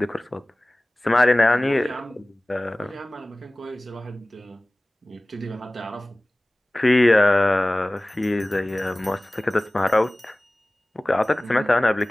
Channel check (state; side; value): normal; both; correlation 0.98